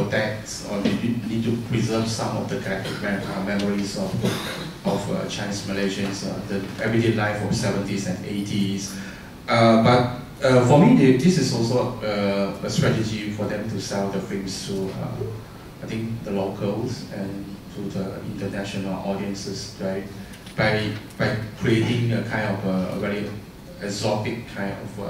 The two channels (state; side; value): identical; both; correlation 1.00